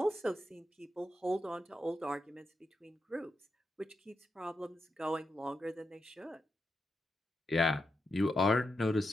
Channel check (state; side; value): normal; both; correlation 0.86